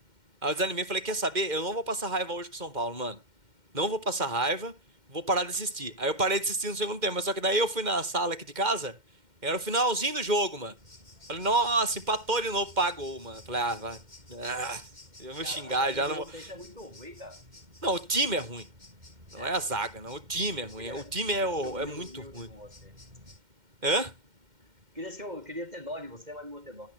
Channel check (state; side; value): late; left; 2.1 ms